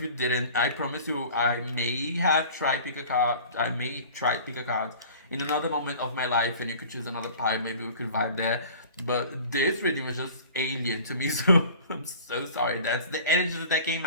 you didn't. I promise you, I may have tried pick a card. I may try pick a card in another moment of my life, and you could choose another part. Maybe we could vibe there. But this reading was just alien to me, so I'm so sorry. That's the energy that came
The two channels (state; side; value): inverted; both; correlation -0.43